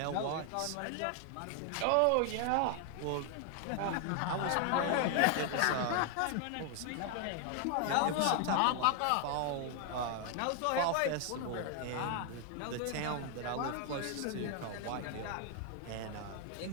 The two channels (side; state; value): both; different; correlation 0.00